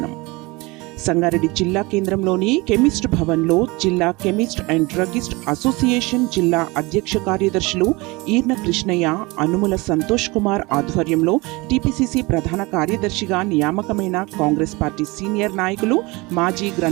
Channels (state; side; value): quieter; left; 24.2 dB